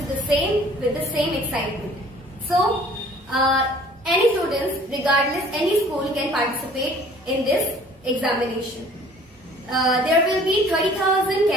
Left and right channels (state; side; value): normal; both; correlation 0.52